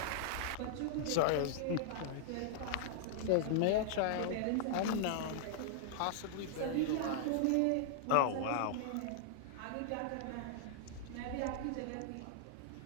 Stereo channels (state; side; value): different; both; correlation -0.01